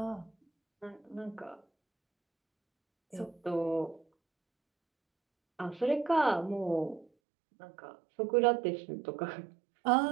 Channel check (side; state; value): left; drops out; at 7.1 s